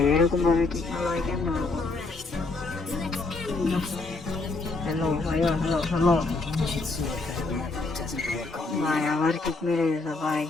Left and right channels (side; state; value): right; quieter; 3.5 dB